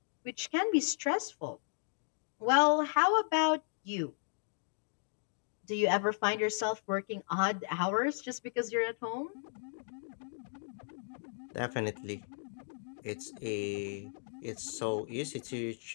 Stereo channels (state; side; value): silent; right; digital silence